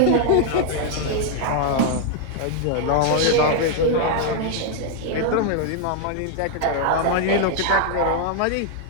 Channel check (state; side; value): different; both; correlation 0.00